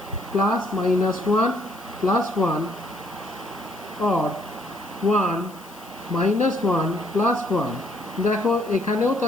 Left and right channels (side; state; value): left; noise; hiss, 22 dB below the sound